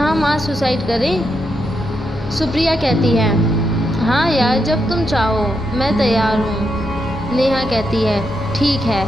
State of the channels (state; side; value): normal; both; correlation 0.82